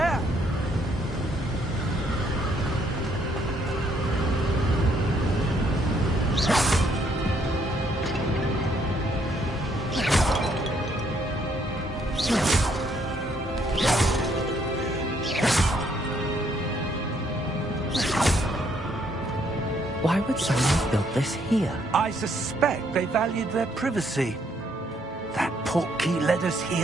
Why would someone have built this here? I suspect they valued their privacy. That portkey led us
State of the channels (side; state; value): both; normal; correlation 0.70